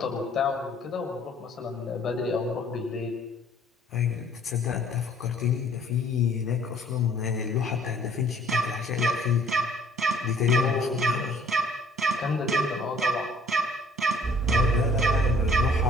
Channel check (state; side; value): normal; both; correlation 0.57